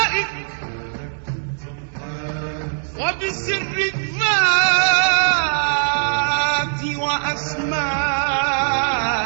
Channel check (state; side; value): silent; left; digital silence